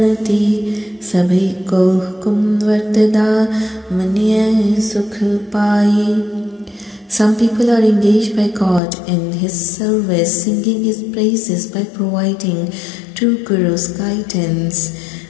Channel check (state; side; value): drops out; right; at 8.8 s